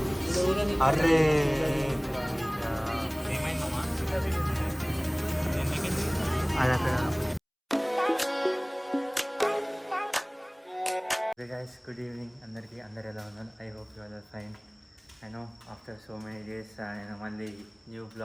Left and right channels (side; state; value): both; identical; correlation 1.00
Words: అరే అది అక్కడ. గైస్ గుడ్ ఈవినింగ్ అందరికీ. అందరు ఎలా ఉన్నారు? I hope you are fine. I know after so many days నేను మళ్ళీ న్యూ